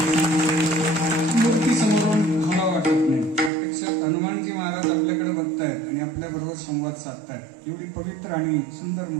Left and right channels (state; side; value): drops out; left; at 3.5 s